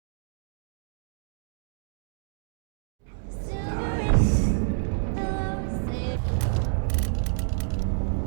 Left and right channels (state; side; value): silent; left; digital silence